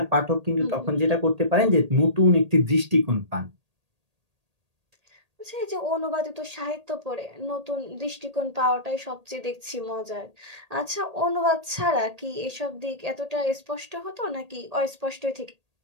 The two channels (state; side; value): late; left; 1.8 ms